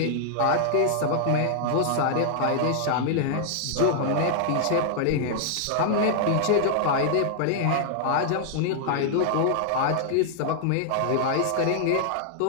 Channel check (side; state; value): both; different; correlation -0.01